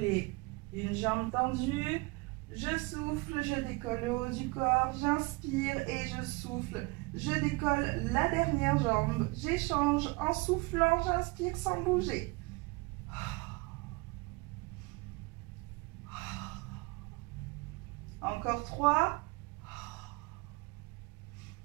une jambe tendue. Je souffle, je décolle le haut du corps. J'inspire et je souffle. Je décolle la dernière jambe. J'échange en soufflant, j'inspire sans bouger. Encore 3.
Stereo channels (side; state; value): left; quieter; 25.4 dB